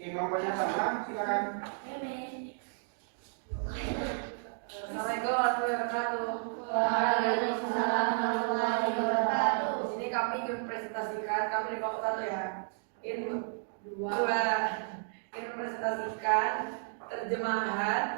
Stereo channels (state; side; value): silent; left; digital silence